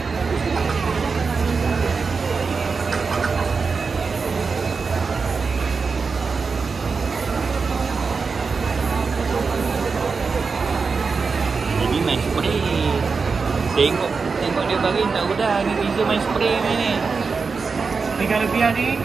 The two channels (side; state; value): left; quieter; 4.8 dB